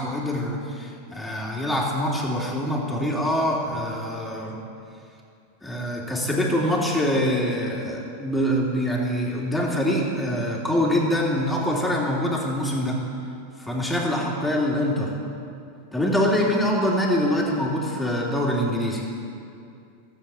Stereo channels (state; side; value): normal; both; correlation 0.37